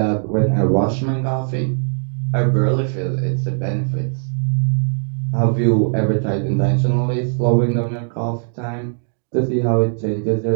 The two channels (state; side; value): silent; left; digital silence